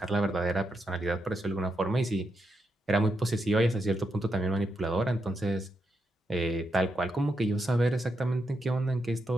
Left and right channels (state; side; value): normal; both; correlation 0.84